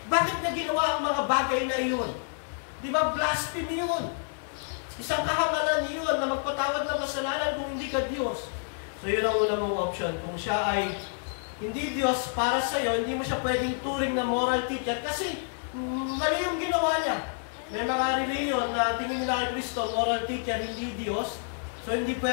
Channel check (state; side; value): silent; right; digital silence